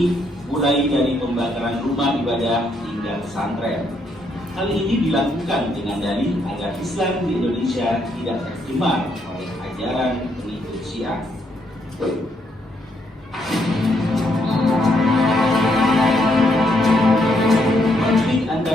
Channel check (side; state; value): both; normal; correlation 0.74